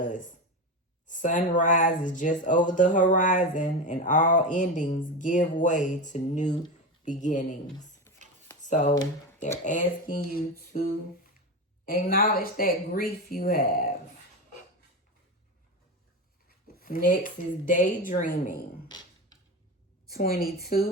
Sunrise is just over the horizon, and all endings give way to new beginnings. So they're asking you to acknowledge that grief you have. Next is daydreaming.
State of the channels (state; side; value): normal; both; correlation 0.20